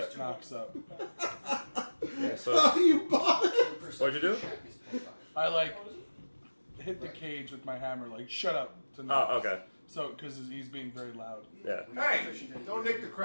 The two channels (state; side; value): inverted; both; correlation -1.00